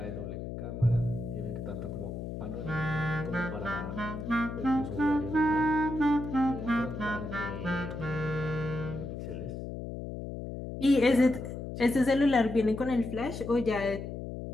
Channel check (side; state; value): left; noise; hum, 7 dB below the sound